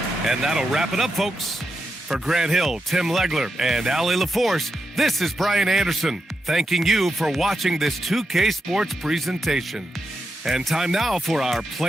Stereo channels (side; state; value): both; normal; correlation 0.86